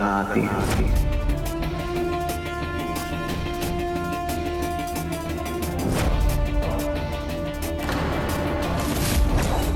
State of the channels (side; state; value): both; identical; correlation 1.00